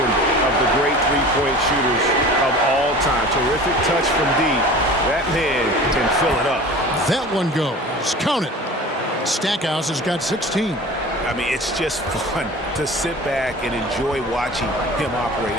of the great three-point shooters of all time. Terrific touch from deep. That man can fill it up. That one goes. Count it. Stackhouse has got 16. I mean, it's just fun to sit back and enjoy watching him operate.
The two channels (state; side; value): normal; both; correlation 0.39